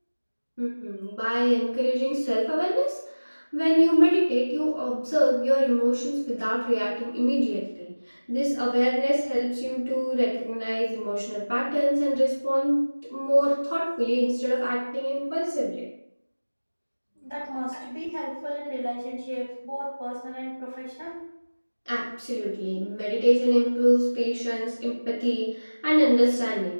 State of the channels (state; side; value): inverted; both; correlation -1.00